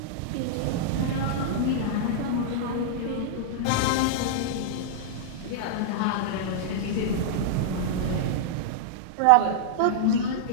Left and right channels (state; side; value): different; both; correlation -0.02